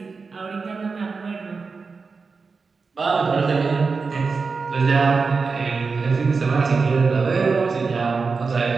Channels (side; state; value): left; quieter; 4.7 dB